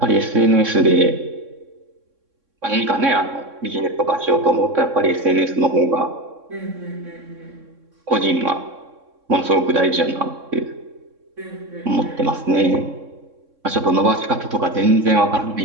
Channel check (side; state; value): left; late; 3.6 ms